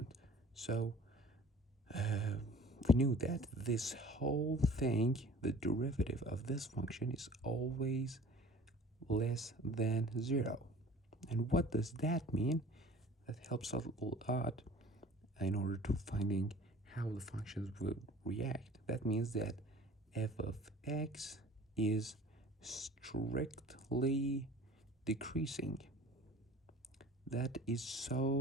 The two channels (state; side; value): normal; both; correlation 0.46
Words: So we knew that this whole thing, the derivative of this function, is always less than 0. And what does that mean? That helps a lot in order to finding how the functions will react. That means that f of x is strictly decreasing. That is